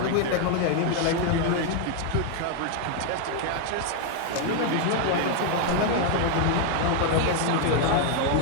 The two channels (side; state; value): both; different; correlation 0.01